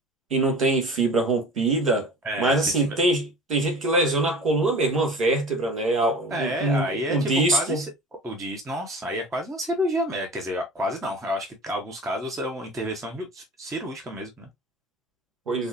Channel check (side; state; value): both; normal; correlation 0.39